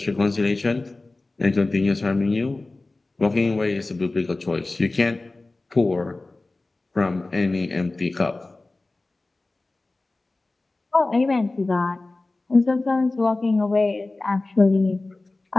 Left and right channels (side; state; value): right; quieter; 3.1 dB